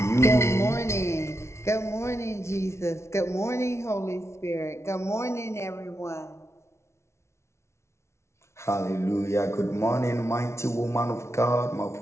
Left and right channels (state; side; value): late; right; 0.13 ms